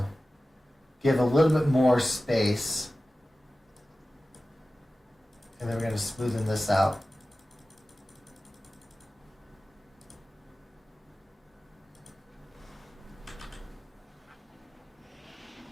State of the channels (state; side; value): normal; both; correlation 0.96